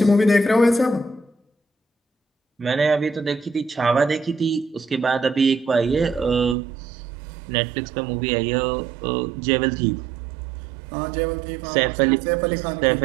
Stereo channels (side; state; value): left; drops out; at 6.6 s